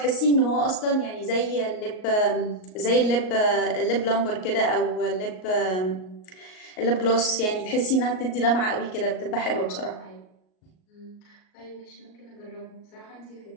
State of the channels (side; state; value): right; late; 38 ms